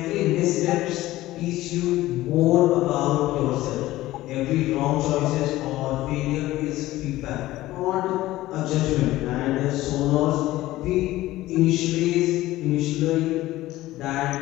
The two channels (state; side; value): quieter; right; 16.5 dB